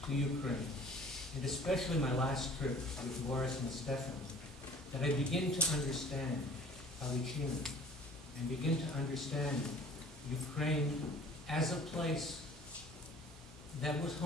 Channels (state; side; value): normal; both; correlation 0.49